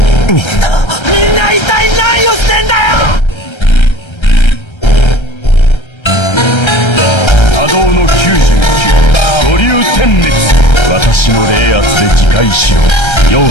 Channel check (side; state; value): right; late; 1.3 ms